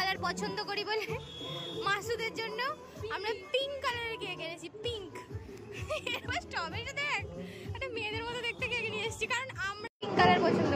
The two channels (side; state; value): both; identical; correlation 1.00